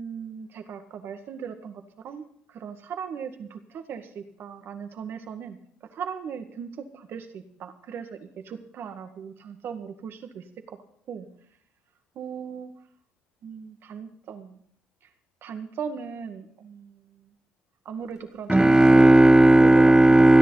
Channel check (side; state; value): both; normal; correlation 0.98